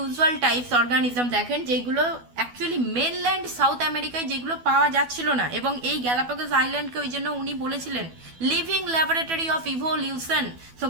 types organism দেখেন, যেগুলো অ্যাকচুয়ালি মেনল্যান্ড সাউথ আমেরিকায় যেগুলো পাওয়া যাচ্ছিল না। এবং এই গ্যালাপাগোস আইল্যান্ডকে ওই জন্য উনি বলেছিলেন living laboratory of evolution. So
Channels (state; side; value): late; left; 12 ms